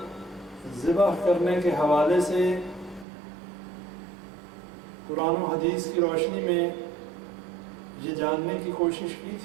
ذبح کرنے کے حوالے سے قرآن و حدیث کی روشنی میں یہ جاننے کی کوشش کی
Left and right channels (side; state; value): left; drops out; at 3.1 s